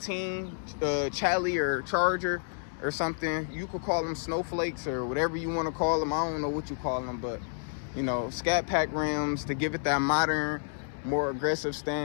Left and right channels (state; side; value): silent; right; 58 dB below the other